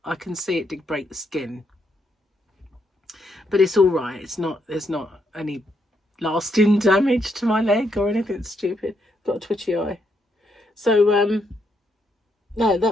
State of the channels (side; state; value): both; normal; correlation 0.77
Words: I can see it did break the skin. But it's all right. There's not any lasting damage to my leg or anything stupid. Got a twitchy eye. So, no,